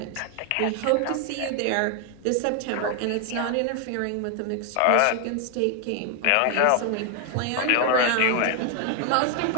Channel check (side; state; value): both; different; correlation 0.00